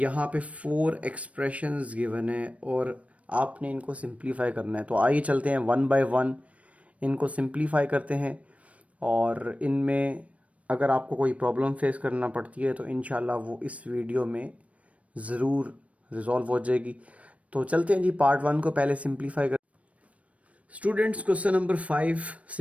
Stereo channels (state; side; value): late; left; 0.065 ms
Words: पे 4 एक्सप्रेशंस गिवन है और आपने इनको सिंप्लीफाई करना है। तो आइए चलते हैं वन बाय वन, इनको सिंप्लीफाई करते हैं और इनमें अगर आपको कोई प्रॉब्लम फेस करना पड़ती है तो इंशाल्लाह वो इस वीडियो में ज़रूर रिजॉल्व हो जाएगी। तो चलते हैं जी पार्ट 1 को पहले सिंप्लीफाई कर। Students, question number 5